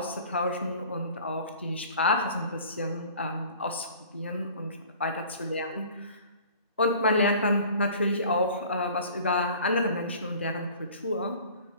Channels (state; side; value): inverted; both; correlation -0.47